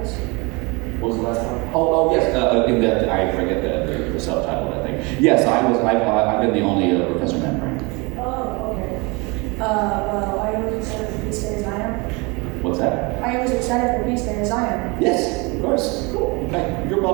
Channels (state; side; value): quieter; left; 27.6 dB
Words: What was the last one? Oh yes. In that, I forget the subtitle of that thing. Yes, I've been the only Professor Membrane. Oh, okay. Well, I only are you as excited for Beast Day as I am? Yes, of course. Cool. In fact, you're